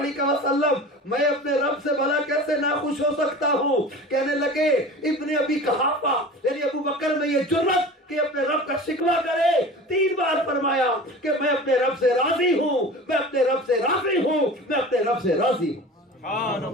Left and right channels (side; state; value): both; normal; correlation 0.36